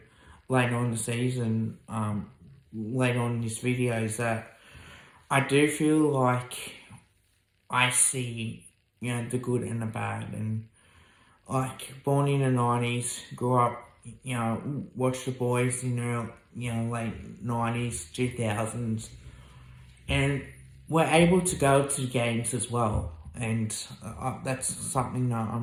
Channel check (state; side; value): identical; both; correlation 1.00